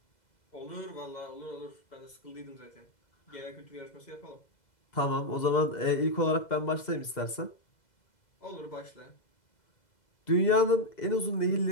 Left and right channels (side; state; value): right; late; 2.0 ms